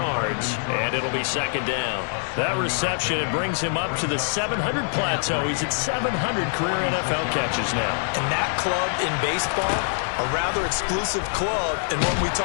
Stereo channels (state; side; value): silent; right; 59 dB below the other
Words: and it'll be second down. That reception, it brings him up to the 700 plateau. He's at 700 career NFL catches now. And that club in baseball, a rather exclusive club, and one we